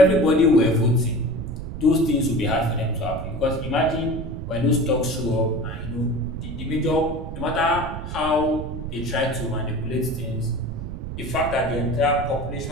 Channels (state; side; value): noise; right; rumble, 7 dB below the sound